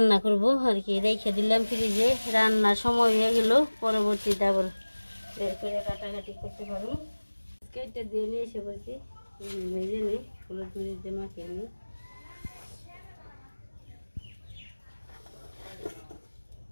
করবো আর কি, রেখে দিলাম ফ্রিজে। রান্নার সময় হয়ে গেল, পরবর্তীতে আবার বের করে কাটাকাটি করতে পারবো। কেটে দিয়ে নিয়ে এসে বলছি, ভেজে নিই, হলুদ মরিচ দিয়ে মাখিয়ে নিই।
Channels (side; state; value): both; inverted; correlation -1.00